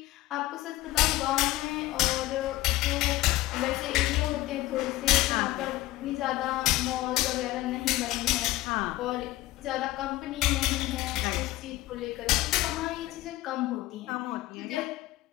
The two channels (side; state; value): right; quieter; 17.3 dB